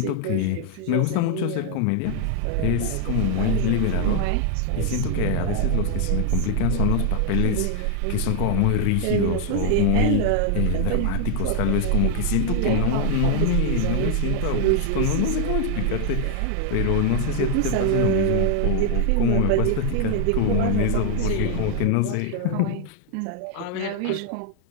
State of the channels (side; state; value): both; different; correlation 0.00